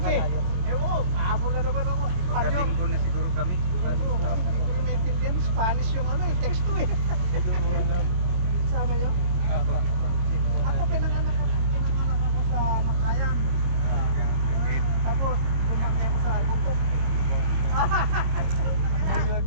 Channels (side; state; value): left; late; 22 ms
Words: kalayo? Ewan, ahabol na naman ako. Espanyol. na siguro kami. Oo, hindi ko rin maintindihan. Spanish yung ano eh, text to eh. Hindi ko alam. Sama niyo? Ako pinanganak ako sa Makayan. Tapos lumaki ako sa Buntok.